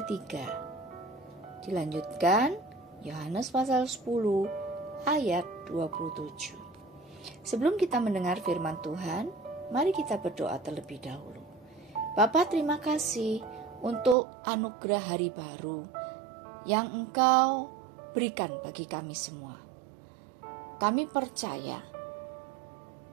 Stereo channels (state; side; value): drops out; left; at 14.2 s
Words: Dilanjutkan Yohanes pasal 10 ayat 27. Sebelum kita mendengar firman Tuhan, mari kita berdoa terlebih dahulu. Bapa, terima kasih untuk anugerah hari baru yang Engkau berikan bagi kami semua. Kami percaya